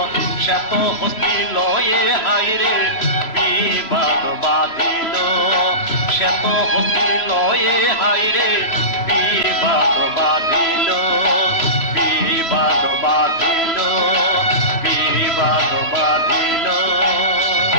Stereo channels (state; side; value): late; right; 3.0 ms